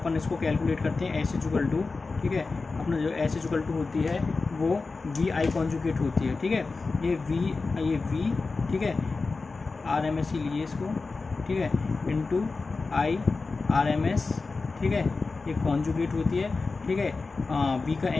इसको कैलकुलेट करते हैं एस इक्वल टू, ठीक है। अपना जो एस इक्वल टू होती है वो वी आई कॉन्जुगेट होती है, ठीक है। ये वी, ठीक है, आर एम एस ही लीजिए इसको, ठीक है, into I R M S, ठीक है। ये कॉन्जुगेट होती है, ठीक है। वी का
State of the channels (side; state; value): right; quieter; 4.0 dB